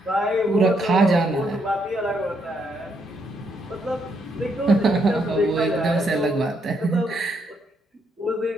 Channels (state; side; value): normal; both; correlation 0.75